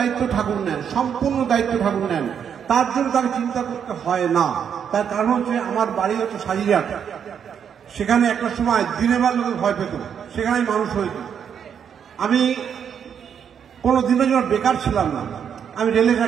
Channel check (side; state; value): left; quieter; 7.9 dB